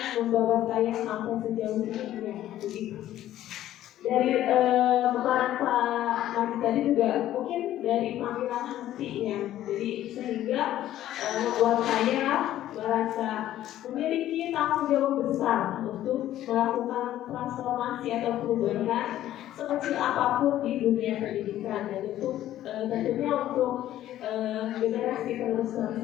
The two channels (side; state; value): right; quieter; 13.0 dB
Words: membawa saya sampai sejauh ini ya begitu. Dari pemaparan Pak Majid tadi juga mungkin dari panggilan hati ya, jadi sehingga membuat saya merasa memiliki tanggung jawab besar untuk melakukan transformasi atau perubahan sekecil apapun di dunia pendidikan, dan itu tentunya untuk generasi penerus